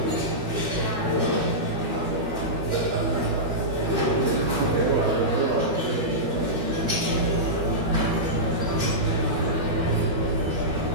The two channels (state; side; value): late; left; 12 ms